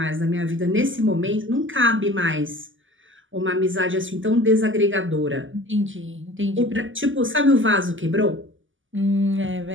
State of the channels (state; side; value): late; left; 0.57 ms